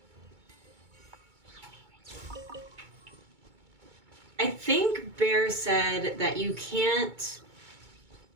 I think Bear said that you can't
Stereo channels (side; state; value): left; late; 2.2 ms